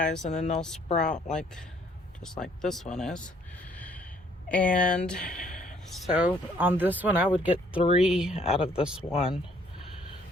and then they'll sprout like just like this one is. And so on this one I would get 3 out of this one,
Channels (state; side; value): normal; both; correlation 0.63